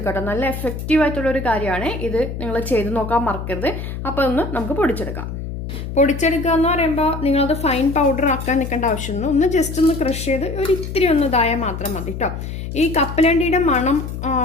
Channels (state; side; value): noise; left; hum, 7 dB below the sound